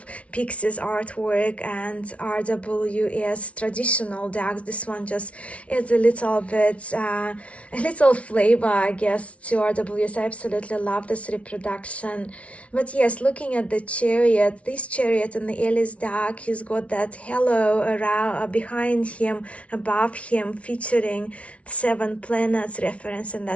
Pixies artwork and RWS traditional decks. This one just adds a little bit, a little flavor, I guess, to RWS. I absolutely love this reproduction. But yes, looking at the chariot, this chariot in the Ellis Deck, he's got that halo around, behind him, above him, featuring 7 planets, referencing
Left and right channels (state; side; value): late; right; 0.063 ms